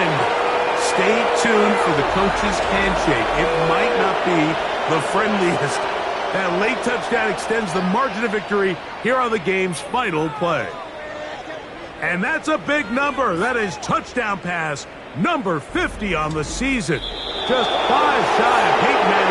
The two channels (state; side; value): identical; both; correlation 1.00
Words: Stay tuned for the coach's handshake. It might not be the friendliest. That late touchdown extends the margin of victory here on the game's final play. And that's a big number. That is touchdown pass number 50 on the season. Just 5 shy of Peyton